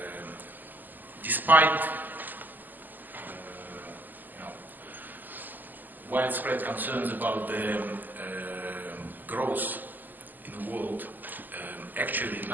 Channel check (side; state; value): left; late; 0.086 ms